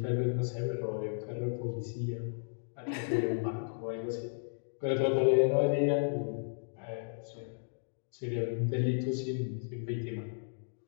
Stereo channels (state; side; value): silent; right; digital silence